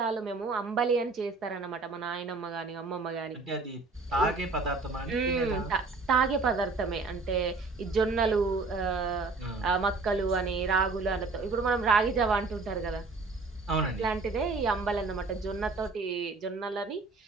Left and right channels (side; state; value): left; quieter; 3.9 dB